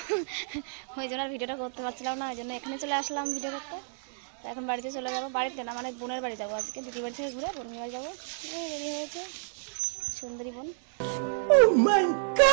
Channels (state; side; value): silent; left; digital silence